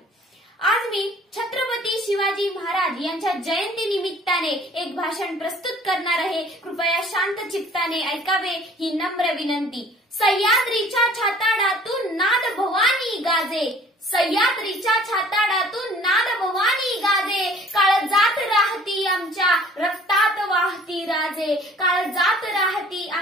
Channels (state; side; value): normal; both; correlation 0.52